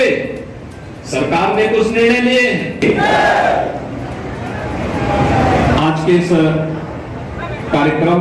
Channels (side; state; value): both; identical; correlation 1.00